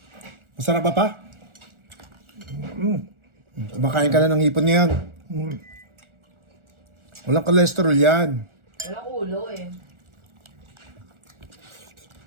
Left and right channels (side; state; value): left; late; 1.4 ms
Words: Masarap ba pa? Kumakain ka na ng hipon ngayon. Walang cholesterol yan. Walang ulo eh.